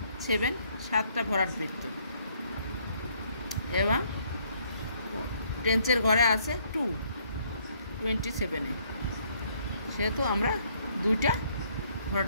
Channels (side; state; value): both; inverted; correlation -0.67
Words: 7, 7টা ভরাট বৃত্ত, এবং টেন্সের ঘরে আছে 2, 27-এ, সেহেতু আমরা 2টা ভরাট